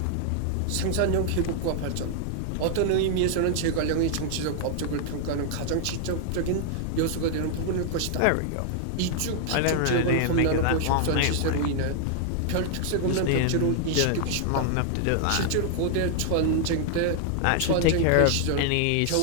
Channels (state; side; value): different; both; correlation 0.00